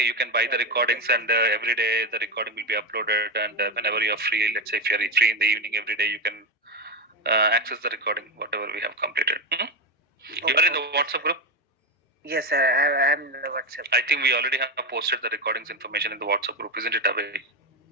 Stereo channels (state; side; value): normal; both; correlation 0.14